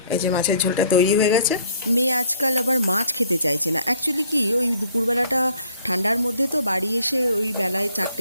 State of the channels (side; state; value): both; inverted; correlation -0.59